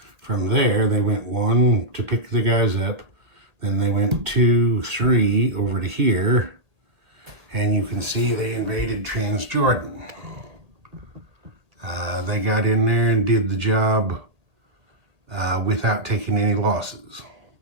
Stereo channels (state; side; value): late; left; 1.8 ms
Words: from there they went 1 to pick the guys up, then they went 2, 3 over to here, and you can see they invaded Transjordan. They got in there and did the job without taking any losses. So